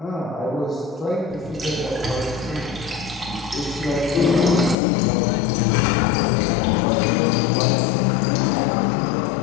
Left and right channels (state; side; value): drops out; right; at 4.8 s